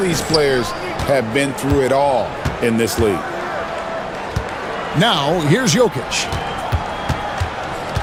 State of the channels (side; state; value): both; identical; correlation 1.00